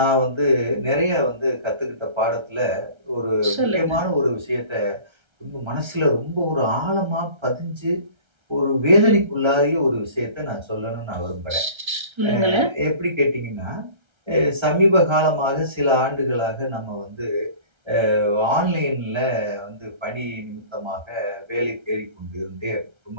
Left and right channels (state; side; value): late; left; 1.3 ms